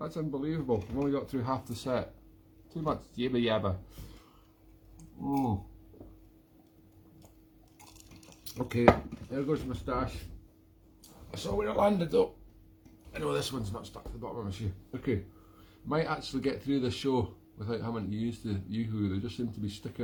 unbelievable. I've only got through half the set. Too much yabba yabba. Okay, there goes the moustache. I saw where it landed though. I know this one's not stuck to the bottom of my shoe. Okay, might actually get through this show without having to use the Yoo-hoo. They just seem to be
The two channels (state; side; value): identical; both; correlation 1.00